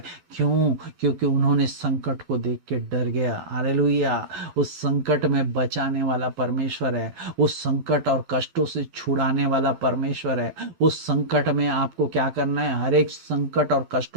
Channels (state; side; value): late; left; 12 ms